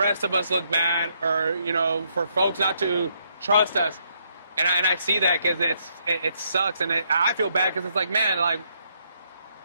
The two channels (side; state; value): both; inverted; correlation -0.74